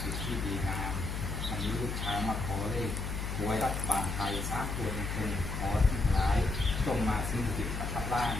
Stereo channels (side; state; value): left; noise; hum, 3 dB below the sound